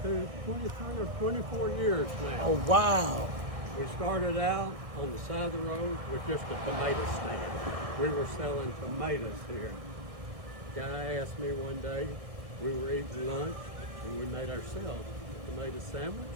or 24 years now. Oh, wow. We started out on the side of the road with just a tomato stand. We were selling tomatoes here. A guy asked me one day, we were eating lunch, and we made ourselves a tomato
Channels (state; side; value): late; left; 1.7 ms